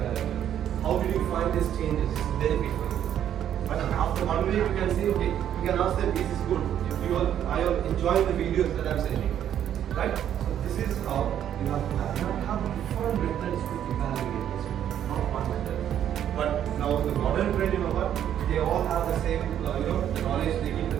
How did you find these changes? This is benefit for you. But after one week, you can say, okay, you can ask them, is this good? I am enjoying the videos that I'm sending. Right? So this is how you have to have different methods to evaluate this, not one method. But now the modern trend, they all have the same, the knowledge, they give the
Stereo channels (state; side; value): quieter; left; 10.2 dB